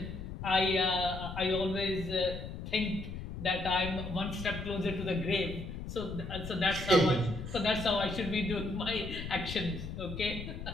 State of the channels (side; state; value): left; noise; rumble, 8 dB below the sound